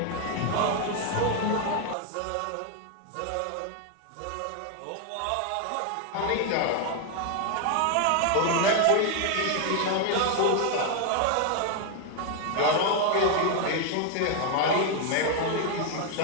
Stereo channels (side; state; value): both; different; correlation 0.01